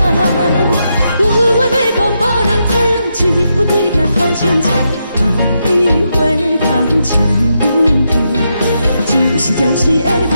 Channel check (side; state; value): both; inverted; correlation -0.83